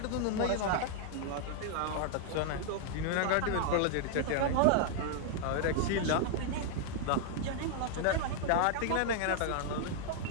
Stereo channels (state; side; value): different; both; correlation 0.00